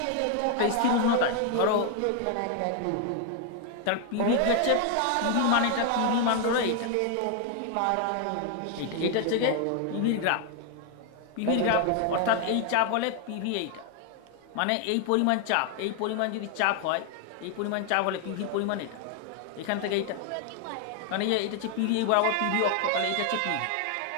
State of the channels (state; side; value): different; both; correlation 0.00